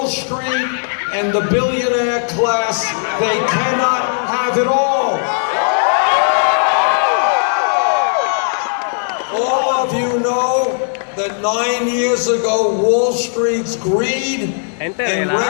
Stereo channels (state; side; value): silent; right; digital silence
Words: Street and the billionaire class they cannot have it all. All of you know that 9 years ago, Wall Street's greed and